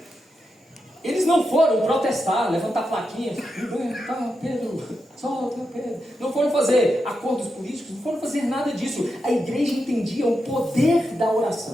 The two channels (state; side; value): normal; both; correlation 0.86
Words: Eles não foram protestar, levantar plaquinhas, liberta Pedro, solta Pedro. Não foram fazer acordos políticos, não foram fazer nada disso. A igreja entendia o poder da